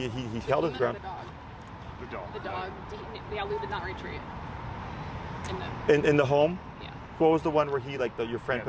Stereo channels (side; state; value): both; identical; correlation 1.00